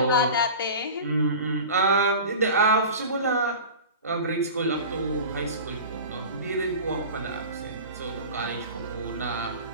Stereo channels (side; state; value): both; inverted; correlation -0.35